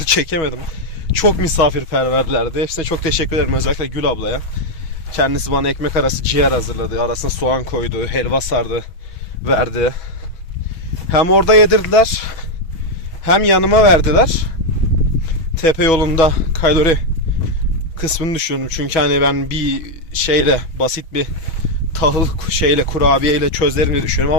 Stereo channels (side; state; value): right; late; 6.2 ms